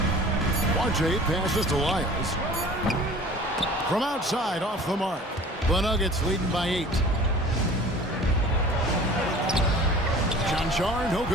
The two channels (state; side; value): normal; both; correlation 0.44